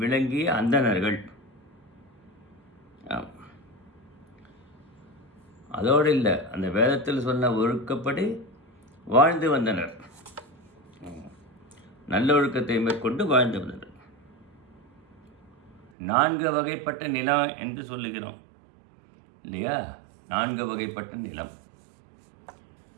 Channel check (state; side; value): drops out; left; at 15.9 s